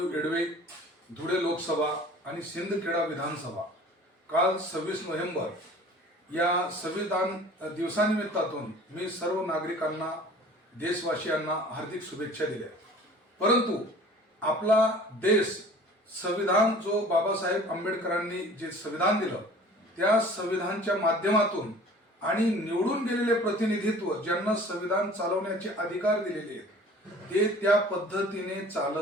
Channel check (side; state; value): both; normal; correlation 0.46